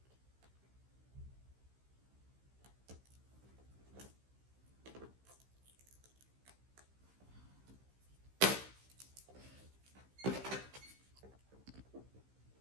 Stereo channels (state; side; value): late; left; 15 ms